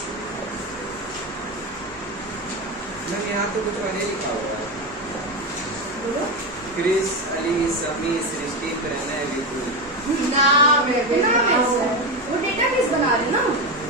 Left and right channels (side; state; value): right; noise; rumble, 26 dB below the sound